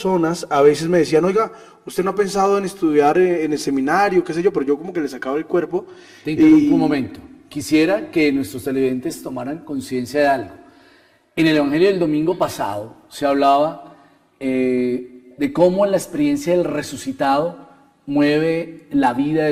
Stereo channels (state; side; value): identical; both; correlation 1.00